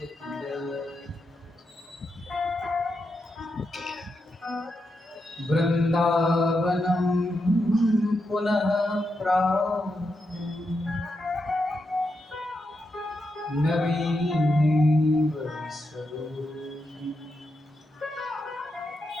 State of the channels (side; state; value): both; normal; correlation 0.85